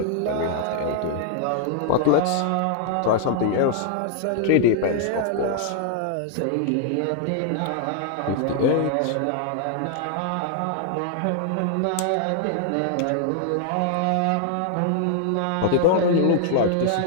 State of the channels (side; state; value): both; different; correlation -0.01